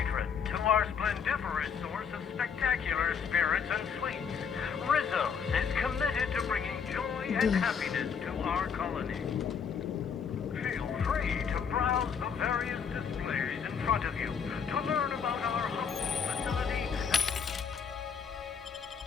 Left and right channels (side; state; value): right; quieter; 6.8 dB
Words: to our splendiferous source of spectacular spirits and sweets. Rizzo's is committed to bringing joy and happiness to our colony. Feel free to browse the various displays in front of you to learn about our humble facility.